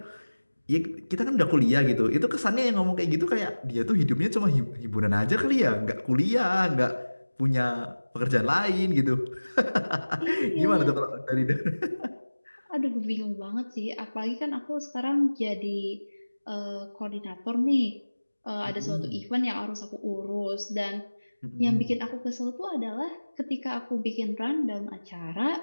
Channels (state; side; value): inverted; both; correlation -1.00